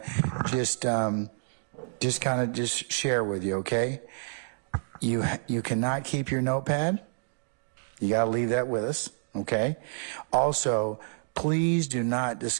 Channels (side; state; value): left; silent; digital silence